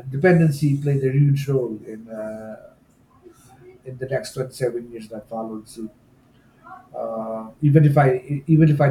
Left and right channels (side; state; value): both; identical; correlation 1.00